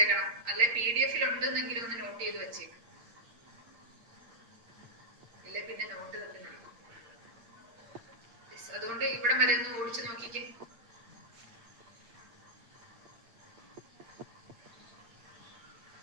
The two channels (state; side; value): late; left; 8.7 ms